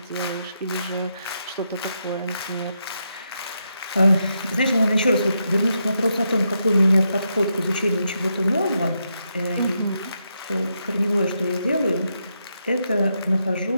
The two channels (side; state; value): both; inverted; correlation -0.82